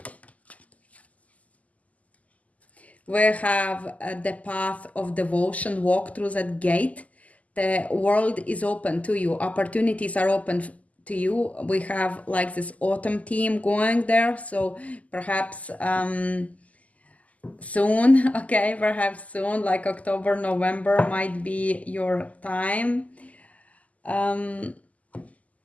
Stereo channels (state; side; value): late; right; 0.073 ms